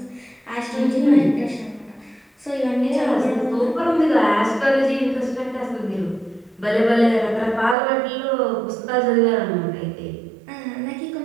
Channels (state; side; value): drops out; left; at 7.8 s